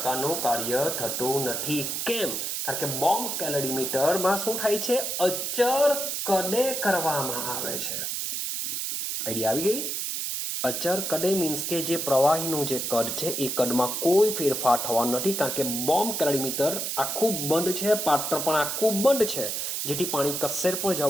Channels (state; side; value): noise; right; hiss, 2 dB below the sound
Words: કાર્ય થતું નથી. કેમ? કારણ કે બોમ્બ કેલરીમીટરમાં શું થાય છે? અચર કદે કરવામાં આવે છે. આઈડિયા આવી ગઈ? અચર કદે મીન્સ કે જે પ્રવાહીનું જે કદ છે એ કદમાં કોઈ ફેરફાર થવાનો નથી, કારણ કે બોમ્બ કેલરીમીટર આખું બંધ છે, પાત્ર પણ આખું બંધ છે, જેથી પાણી કશે પણ